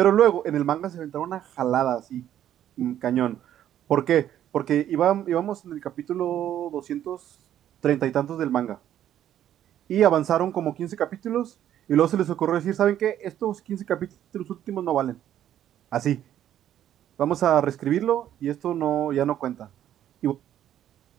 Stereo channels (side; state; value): left; quieter; 11.2 dB